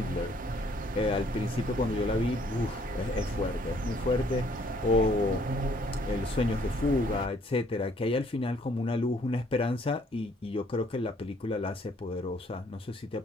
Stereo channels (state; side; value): normal; both; correlation 0.63